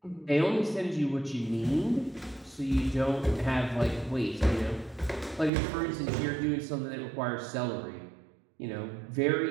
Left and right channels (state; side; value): drops out; left; at 5.5 s